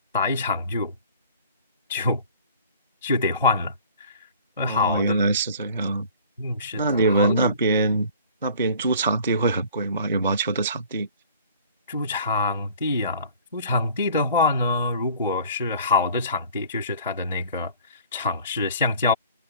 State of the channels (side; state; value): both; inverted; correlation -0.49